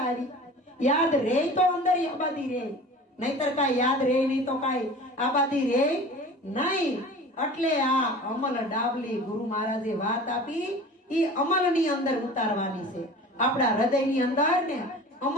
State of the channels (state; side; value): normal; both; correlation 0.40